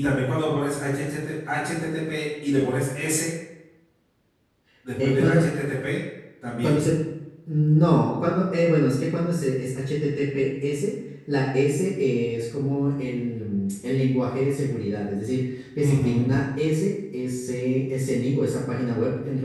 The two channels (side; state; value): both; identical; correlation 1.00